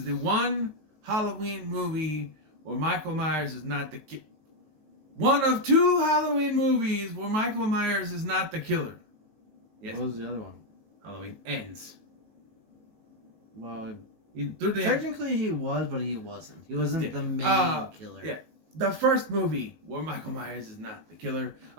the one Halloween movie where Michael Myers is not the killer. One of two Halloween movies where Michael Myers is not the killer. Yes. What was the other one? Halloween Ends. Well, technically he was, but he wasn't. He wasn't the main killer. Yeah. The first movie where Michael Myers is not the killer,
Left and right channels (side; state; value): left; late; 19 ms